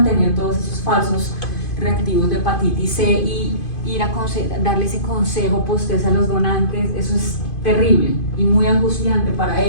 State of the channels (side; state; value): right; late; 2.5 ms